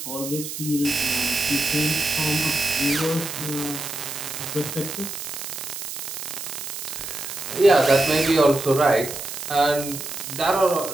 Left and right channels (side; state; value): right; noise; hiss, 8 dB below the sound